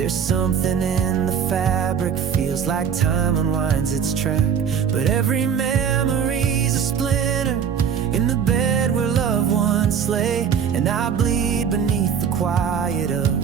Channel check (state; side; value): quieter; left; 7.5 dB